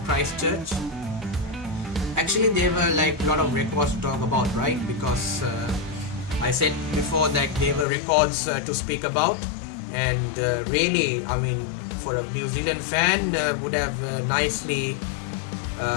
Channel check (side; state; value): right; drops out; at 7.9 s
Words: Christchurch. Actually, there were like a lot of records to talk about, right? Because I said before that there were records to speak about, and really, I mean, for a New Zealand fan, would have nicely